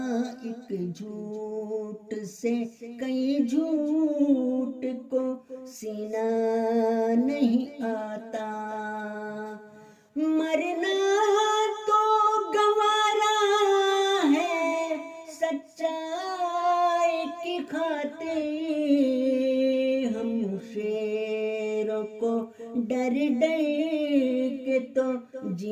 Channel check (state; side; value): identical; both; correlation 1.00